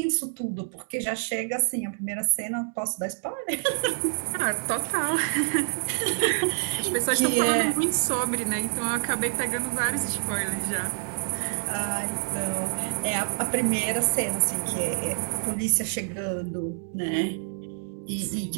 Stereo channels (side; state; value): left; silent; digital silence